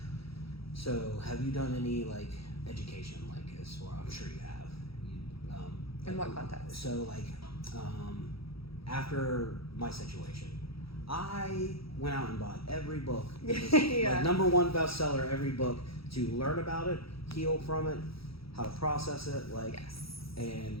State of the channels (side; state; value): right; late; 0.76 ms